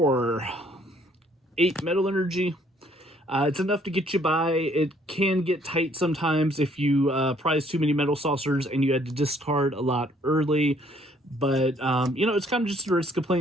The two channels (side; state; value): both; normal; correlation 0.63